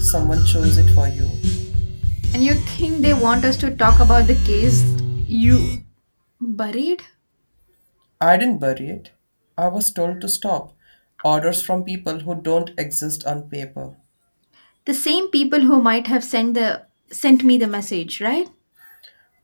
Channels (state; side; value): inverted; both; correlation -1.00